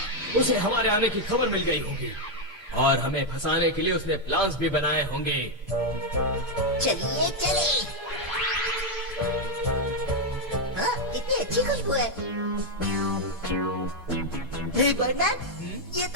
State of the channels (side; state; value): both; normal; correlation 0.02